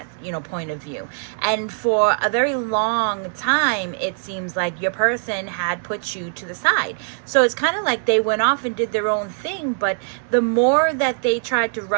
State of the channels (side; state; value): left; silent; 64 dB below the other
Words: you know, point of view. And for a very long time, it seems like your person had put you to the side. So it's kind of like they went off and did their own thing, but the more that they tried to